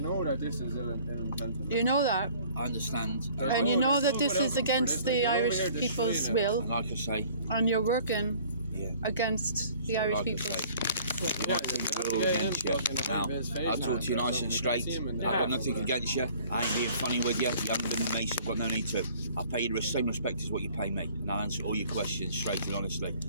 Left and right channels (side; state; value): both; inverted; correlation -0.53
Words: know that this is ill-intentioned. You know that. I understand. And you know that this is against the Irish people's will. And like I say, and you're working against the Irish people. We're all against you. Now, I'll talk to you nice and straight. I've got nothing against you. I ain't being funny with you. You haven't been with me, so I've got no need to. I'll pay you the same respect as what you pay me, and I'll answer all your questions straight and honestly.